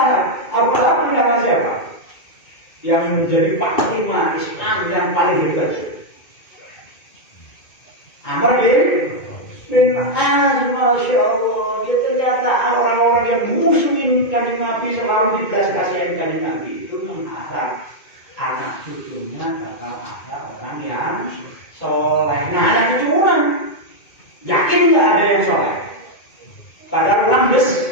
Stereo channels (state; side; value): late; right; 2.2 ms